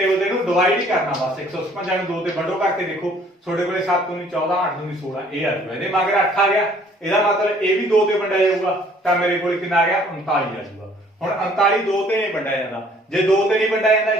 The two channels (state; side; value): normal; both; correlation 0.58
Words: ਤੇ ਇਹਨੂੰ ਡਿਵਾਈਡ ਹੀ ਕਰਨਾ ਬਸ। 156 ਨੂੰ 2 ਤੇ ਵੰਡੋ ਕਰਕੇ ਦੇਖੋ, ਤੁਹਾਡੇ ਕੋਲੇ 7 ਨੂੰ 14 8 ਨੂੰ 16 ਇਹ ਆ ਜਾਊਗਾ। ਇਹਦੇ ਮਗਰ 8 ਆ ਗਿਆ, ਇਹਦਾ ਮਤਲਬ ਇਹ ਵੀ 2 ਤੇ ਵੰਡਿਆ ਜਾਊਗਾ ਤਾਂ ਮੇਰੇ ਕੋਲੇ ਕਿੰਨਾ ਆ ਗਿਆ? 39 ਆ ਜਾਊਗਾ। ਹੁਣ 39 2 ਤੇ ਨਹੀਂ ਵੰਡਿਆ ਜਾਂਦਾ। ਜੇ 2 ਤੇ ਨਹੀਂ ਵੰਡਿਆ ਜਾਂਦਾ